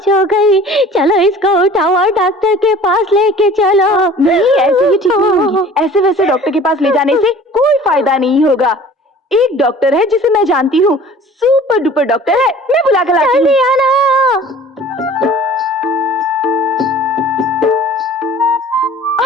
हो गई। चलो इसको उठाओ और डॉक्टर के पास लेके चलो। नहीं, ऐसे ही ठीक नहीं होगी। ऐसे वैसे डॉक्टर के पास ले जाने से कोई फायदा नहीं होगा। एक डॉक्टर है जिसे मैं जानती हूँ, सुपर डुपर डॉक्टर है, मैं बुला कर लाती हूँ।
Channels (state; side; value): normal; both; correlation 0.46